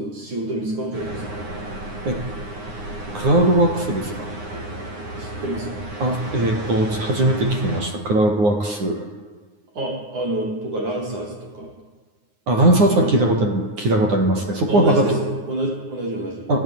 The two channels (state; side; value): late; left; 9.6 ms